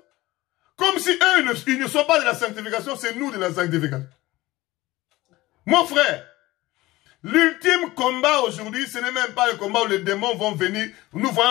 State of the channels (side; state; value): right; quieter; 18.8 dB